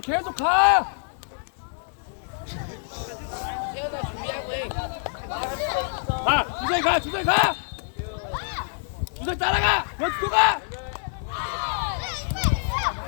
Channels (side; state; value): right; silent; digital silence